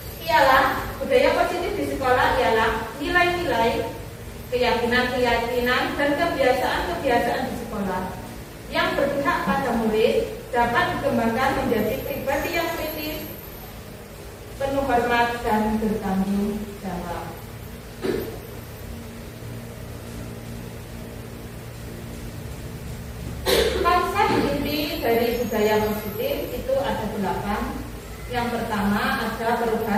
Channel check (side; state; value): both; identical; correlation 1.00